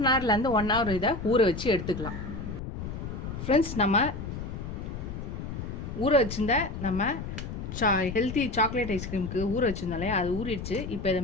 ஹவர்லேருந்து 1 ஹவர் இதை ஊற வச்சு எடுத்துக்கலாம். ஃப்ரெண்ட்ஸ், நம்ம ஊற வச்சுருந்த நம்ம ஹெல்த்தி சாக்லேட் ஐஸ்கிரீமுக்கு ஊற வச்சுருந்தாலே அது ஊறிடுச்சு. இப்போ இதை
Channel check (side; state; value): left; noise; rumble, 7 dB below the sound